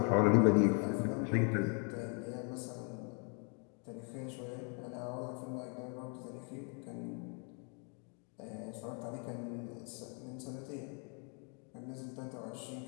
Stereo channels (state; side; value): quieter; right; 38.6 dB